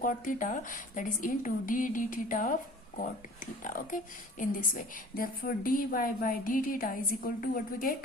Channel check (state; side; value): normal; both; correlation 0.46